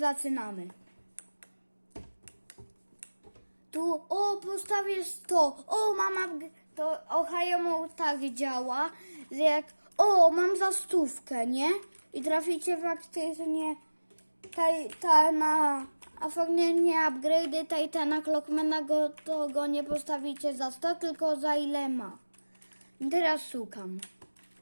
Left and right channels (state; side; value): inverted; both; correlation -1.00